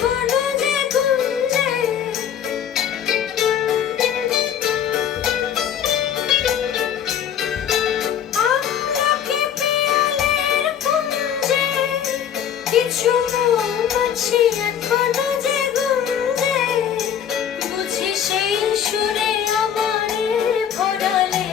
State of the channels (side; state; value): right; quieter; 9.1 dB